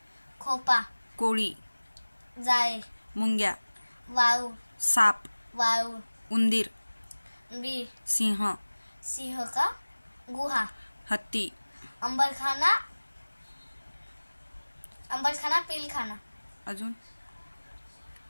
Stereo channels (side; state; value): both; inverted; correlation -1.00